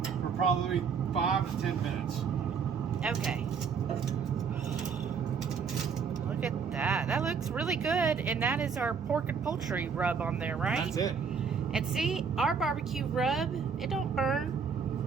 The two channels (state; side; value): quieter; left; 6.1 dB